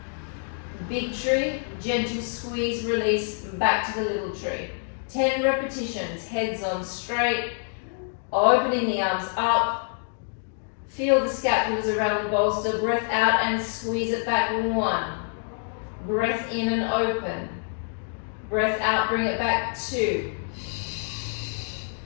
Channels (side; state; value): right; silent; 61 dB below the other